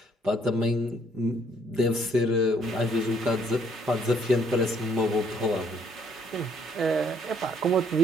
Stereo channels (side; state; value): both; normal; correlation 0.66